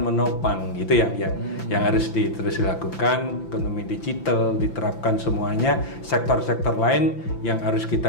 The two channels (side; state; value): right; late; 5.9 ms